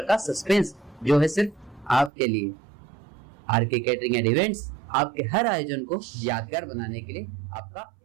का सस्पेंस जो है सिर्फ आपके लिए। आरके केटरिंग एंड इवेंट्स आपके हर आयोजन को यादगार बनाने के लिए आपका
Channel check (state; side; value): drops out; left; at 2.1 s